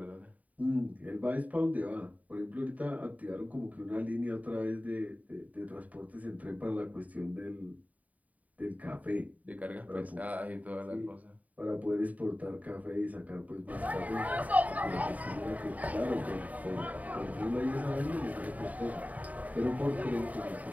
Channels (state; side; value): late; left; 0.072 ms